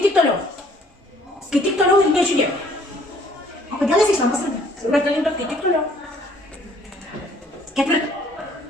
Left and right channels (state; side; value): normal; both; correlation 0.60